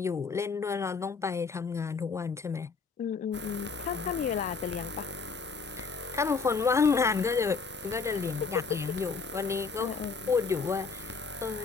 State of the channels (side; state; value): right; quieter; 4.9 dB